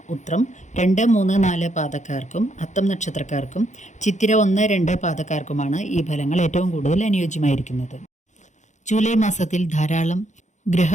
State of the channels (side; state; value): right; late; 0.35 ms